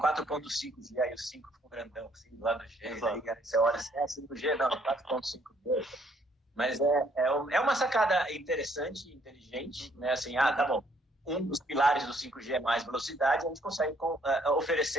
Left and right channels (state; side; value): normal; both; correlation 0.66